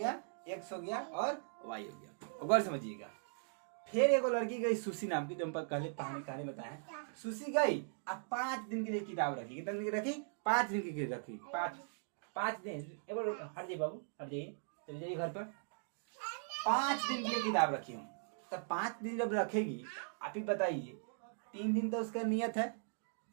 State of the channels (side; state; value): left; silent; digital silence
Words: x हो गया और y हो गया। गौर समझिएगा। फिर एक लड़की गई सुशी नाम की, जो हम पहले कहानी बताया। सुशी गई अब 5 दिन के लिए किताब रखी। कितने दिन की रखी? 5 दिन की रखी। 5 दिन। हट जाइए बाबू, हट जाइए, चले जाइए घर पर। 5 दिन की किताब रखी हूँ। तब 5 दिन जब रखेगी, आप ही बताइए, 3 दिन तो उसका नियत है।